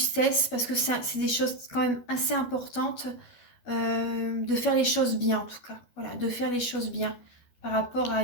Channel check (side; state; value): right; late; 12 ms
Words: parce que c'est des choses quand même assez importantes. De faire les choses bien en tout cas. Voilà, de faire les choses bien. Par rapport à